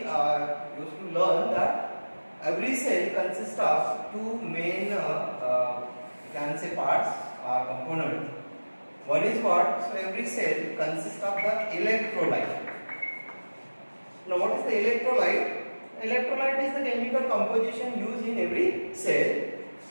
to learn that every cell consists of two main can say parts or components. One is what? So, every cell consists of the electrolyte. Now, what is the electrolyte? Electrolyte is the chemical composition used in every cell.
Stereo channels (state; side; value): inverted; both; correlation -1.00